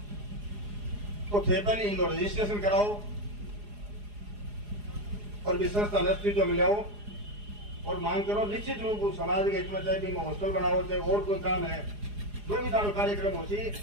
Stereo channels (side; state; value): left; late; 4.8 ms